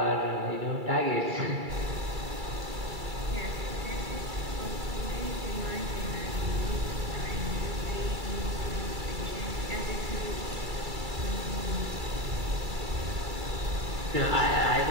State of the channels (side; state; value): left; late; 2.3 ms